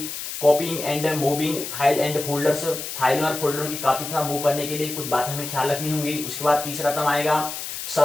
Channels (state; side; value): noise; left; hiss, 7 dB below the sound